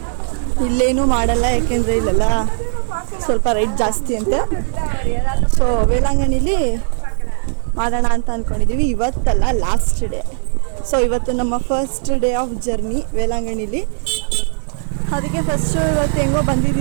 ಇಲ್ಲೇನೂ ಮಾಡಲ್ಲ, ಯಾಕೆಂದರೆ ಇಲ್ಲೆಲ್ಲ ಸ್ವಲ್ಪ ರೇಟ್ ಜಾಸ್ತಿ ಅಂತೆ. ಸೊ ವೇಲಾಂಗಣಿಲಿ ಮಾಡೋಣ ಅಂತ ಅಂದ್ಕೊಂಡಿದ್ದೀವಿ. ಇವತ್ತಲ್ಲ, ಲಾಸ್ಟ್ ಡೇ. ಸೊ ಇವತ್ತು ನಮ್ಮ ಫಸ್ಟ್ ಡೇ ಆಫ್ ಜರ್ನಿ ವೇಲಾಂಗಣಿಲಿ. ಅದಕ್ಕೆ ಫಸ್ಟು ಇವತ್ತು ಹೆಂಗೋ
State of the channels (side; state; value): left; silent; digital silence